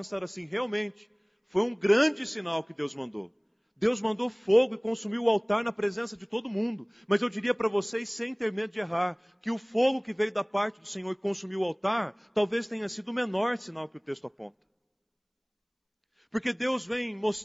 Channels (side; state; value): both; identical; correlation 1.00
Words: assim, realmente, foi um grande sinal que Deus mandou. Deus mandou fogo e consumiu o altar na presença de todo mundo. Mas eu diria para vocês, sem ter medo de errar, que o fogo que veio da parte do Senhor e consumiu o altar, talvez tenha sido o menor sinal que o texto aponta. Porque Deus vem